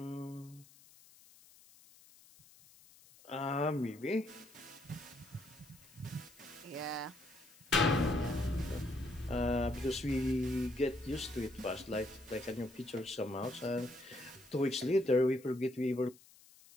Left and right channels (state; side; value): noise; left; hiss, 24 dB below the sound